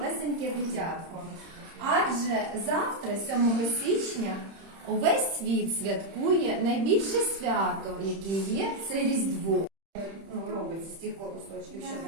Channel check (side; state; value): left; late; 31 ms